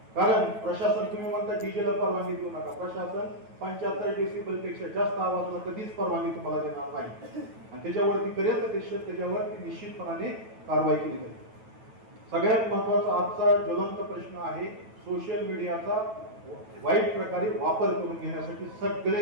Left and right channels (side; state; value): left; late; 9.2 ms